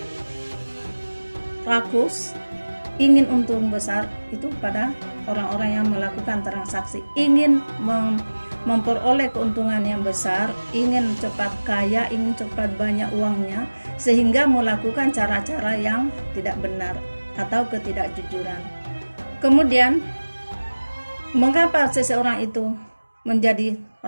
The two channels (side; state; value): both; inverted; correlation -1.00